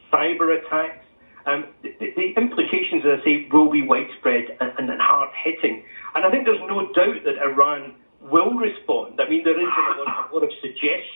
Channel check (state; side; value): inverted; both; correlation -1.00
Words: cyber attacks. The implications, as I say, will be widespread and hard-hitting. And I think there's no doubt that Iran will respond. I mean, there is a lot of